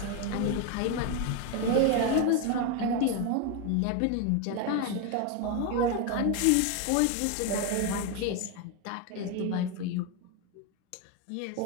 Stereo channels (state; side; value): different; both; correlation 0.02